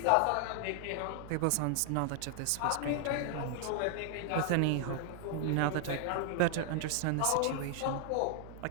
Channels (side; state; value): both; different; correlation 0.00